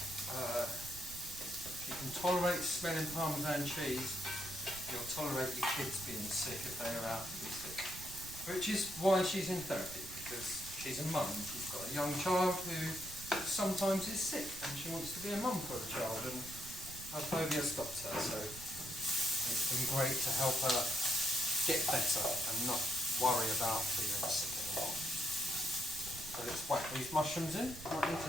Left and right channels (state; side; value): noise; right; rumble, 14 dB below the sound